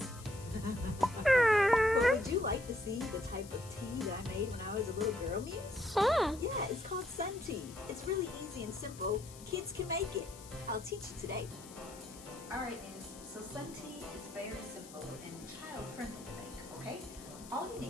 But would you like to see the type of tea that I made when I was a little girl, Muse? Sure. Yeah, it's called sun tea. It's really easy and simple. Kids can make it. I'll teach you today. Alright, Muse. So sun tea is very simple and child-friendly to make, okay? All you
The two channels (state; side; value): noise; left; hiss, 17 dB below the sound